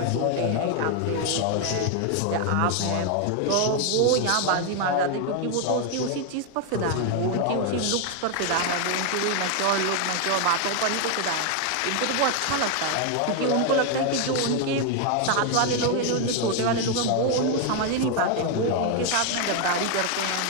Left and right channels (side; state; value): both; different; correlation 0.01